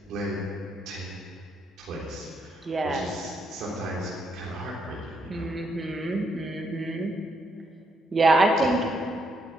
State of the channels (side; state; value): both; normal; correlation 0.76